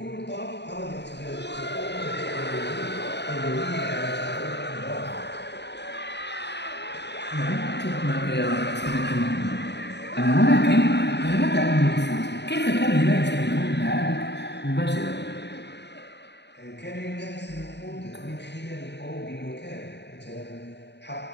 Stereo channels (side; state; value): right; late; 0.50 ms